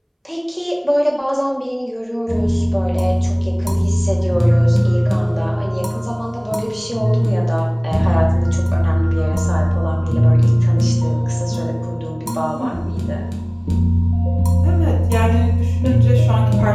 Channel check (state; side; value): identical; both; correlation 1.00